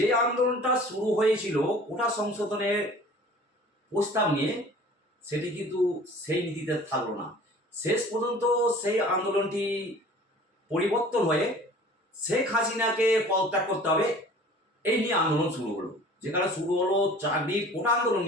আন্দোলনটা শুরু হয়েছিল কোটা সংশোধনের প্রস্তাব নিয়ে, সেটি কিন্তু সেই নীতিতে থাকলো না। শেষ পর্যন্ত সেই আন্দোলনটি পরিবর্তন হয়ে শেখ হাসিনাকে পদত্যাগ করতে হবে, এই নিয়ে আন্দোলন শুরু হলো। যেখানে শুরু হলো চাকরির কোটা আন্দোলন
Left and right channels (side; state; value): both; normal; correlation 0.46